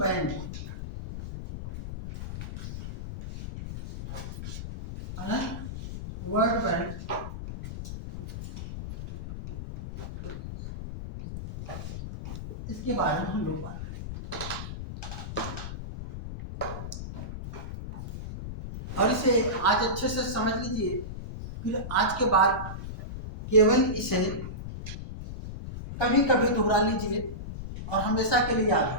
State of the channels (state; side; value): noise; left; rumble, 8 dB below the sound